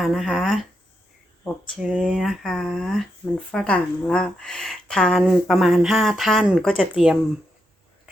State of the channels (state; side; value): normal; both; correlation 0.83